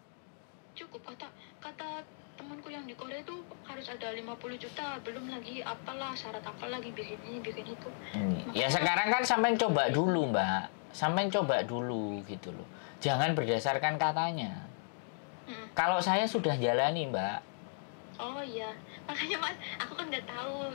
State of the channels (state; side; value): silent; right; digital silence